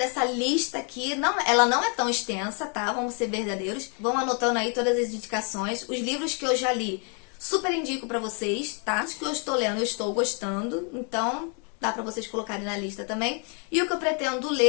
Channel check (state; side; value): quieter; right; 38.9 dB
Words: lista aqui. Ela não é tão extensa, tá? Vamos ser verdadeiros. Vão anotando aí todas as indicações. Os livros que eu já li, super indico pra vocês, tá? Os que eu estou lendo, eu estou gostando. Então dá pra vocês colocarem na lista também. E o que eu pretendo